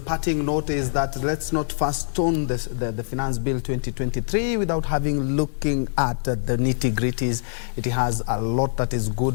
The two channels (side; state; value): right; silent; digital silence